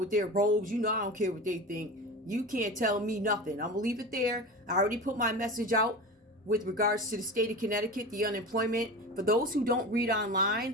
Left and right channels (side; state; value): both; normal; correlation 0.29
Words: their robes. You know I don't care what they think. You can't tell me nothing. I'm gonna leave it there. I already put my message out with regards to the state of Connecticut, the unemployment. For those who don't read